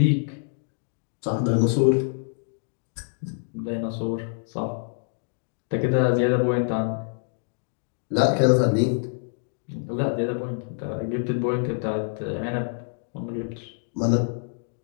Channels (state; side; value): silent; right; digital silence